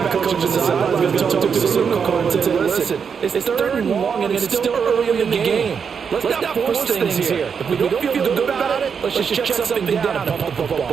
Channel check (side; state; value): left; quieter; 6.5 dB